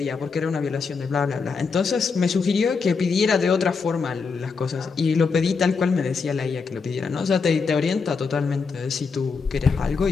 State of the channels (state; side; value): quieter; right; 5.0 dB